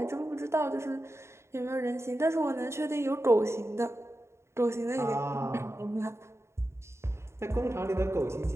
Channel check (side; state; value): left; late; 0.13 ms